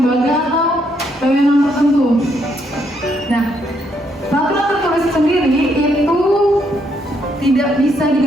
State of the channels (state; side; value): normal; both; correlation 0.74